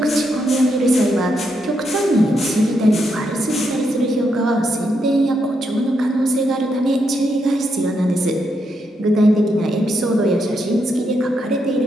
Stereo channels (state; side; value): normal; both; correlation 0.80